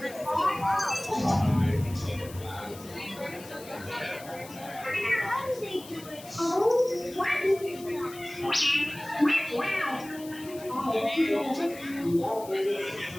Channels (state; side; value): noise; left; hiss, 17 dB below the sound